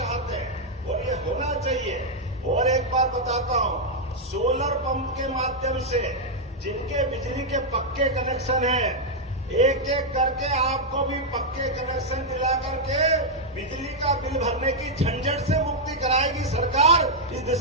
हैं और ये होना चाहिए। और एक बार बताता हूँ, सोलर पंप के माध्यम से जिनके बिजली के पक्के कनेक्शन हैं, एक एक करके आपको भी पक्के कनेक्शन दिला करके बिजली का बिल भरने की झंझट से मुक्ति कराएगी सरकार। इस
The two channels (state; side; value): normal; both; correlation -0.02